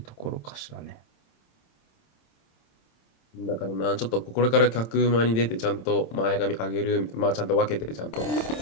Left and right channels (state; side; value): late; right; 27 ms